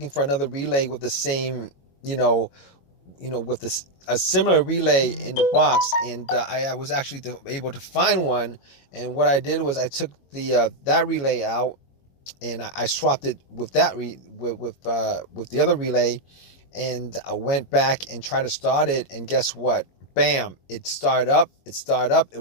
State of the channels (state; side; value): late; right; 22 ms